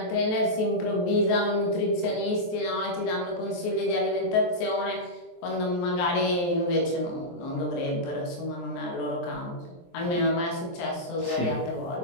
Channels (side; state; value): right; late; 23 ms